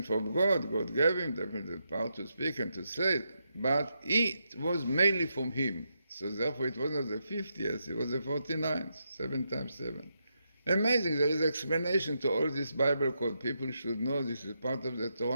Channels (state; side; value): inverted; both; correlation -0.83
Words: from God. God gave him definitely the power to speak and to say it. But it was mainly from him. So therefore it was not the 50th, it was the 49th, 7 times 7. Amazing, there is explanation to all this Bible code. People should know this is part of the